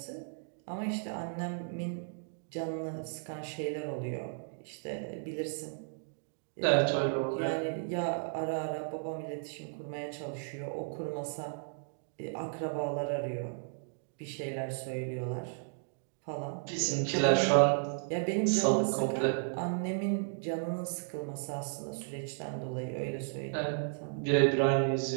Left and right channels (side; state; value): left; silent; digital silence